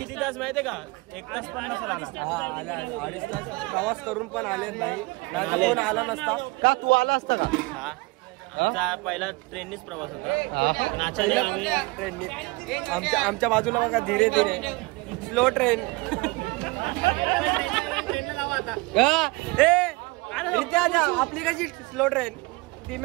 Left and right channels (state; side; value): quieter; left; 24.7 dB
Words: तास माहितीये का? 1 तास पण नसेल आला. हा आले, 2.5 तास प्रवास करून पण आले नाही. नाही कोण आला नसता का? तू आला असता का? आमचा पहिला ट्रेननीच प्रवास होता. ट्रेननी. आमच्या बाजूला बघा धीरे धीरे स्लो ट्रेन. आपली कशी स्लो ट्रेन,